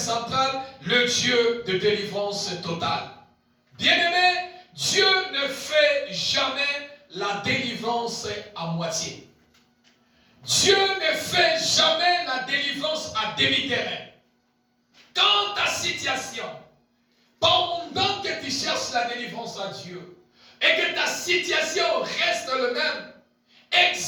le Dieu de délivrance totale. Bien-aimé, Dieu ne fait jamais la délivrance à moitié. Dieu ne fait jamais la délivrance à demi-terrain. Quand ta situation, pendant que tu cherches la délivrance à Dieu, et que ta situation reste le même,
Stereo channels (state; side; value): identical; both; correlation 1.00